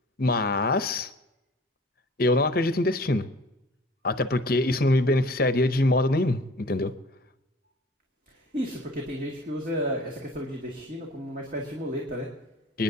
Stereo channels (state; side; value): normal; both; correlation 0.47